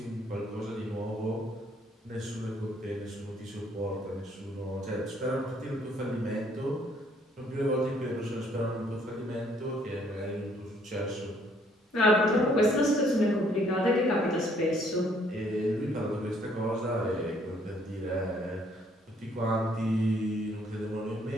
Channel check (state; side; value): normal; both; correlation 0.65